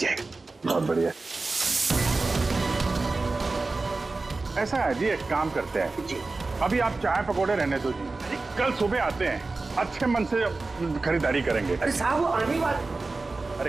बहुत बढ़िया। ऐसा है जी, एक काम करते हैं जी, अभी आप चाय पकौड़े रहने दो जी, कल सुबह आते हैं, अच्छे मन से खरीदारी करेंगे। अरे साहब वो आने वाले।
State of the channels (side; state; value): left; quieter; 3.6 dB